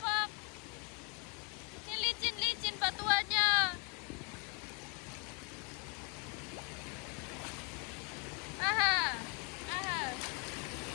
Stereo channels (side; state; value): right; quieter; 32.6 dB